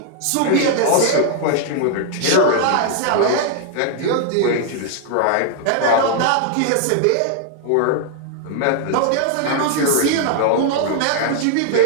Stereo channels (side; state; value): both; different; correlation 0.00